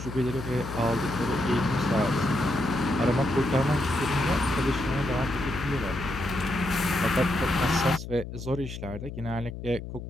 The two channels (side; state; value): left; noise; hum, 9 dB below the sound